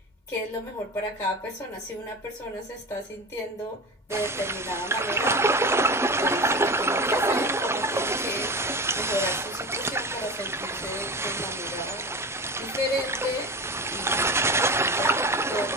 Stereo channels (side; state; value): both; normal; correlation 0.28